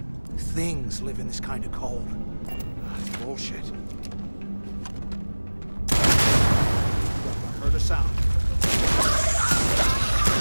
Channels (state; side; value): inverted; both; correlation -1.00